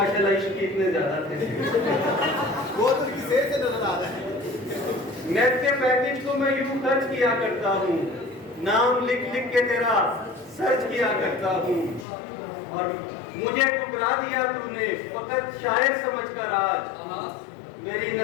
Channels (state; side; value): drops out; right; at 12.1 s